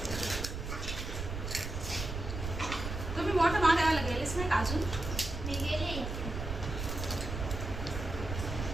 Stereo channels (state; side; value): noise; right; rumble, 5 dB below the sound